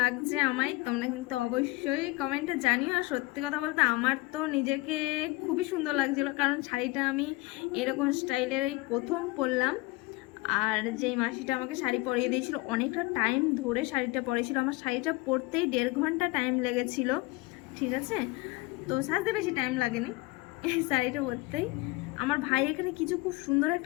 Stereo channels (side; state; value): right; quieter; 21.4 dB